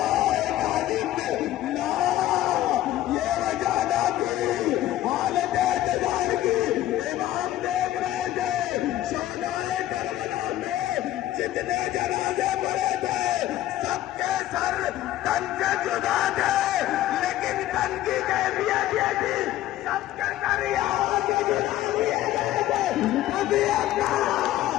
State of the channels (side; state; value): right; quieter; 13.9 dB